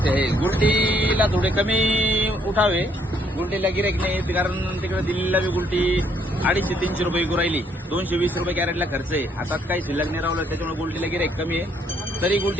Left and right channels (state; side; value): normal; both; correlation 0.69